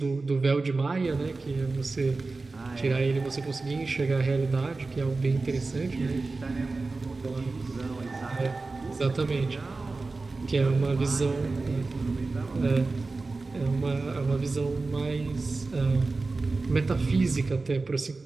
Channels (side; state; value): left; quieter; 3.7 dB